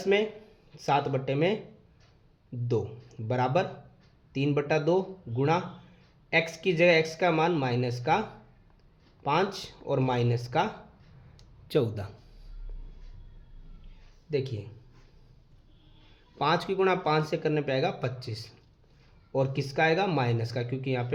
में 7/2 बराबर 3/2 गुणा x की जगह x का मान माइनस का 5 और माइनस का 14। देखिए, 5 की गुणा 5 से करने पे आएगा 25, और किसका आएगा, माइनस का, क्योंकि यहाँ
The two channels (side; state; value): both; identical; correlation 1.00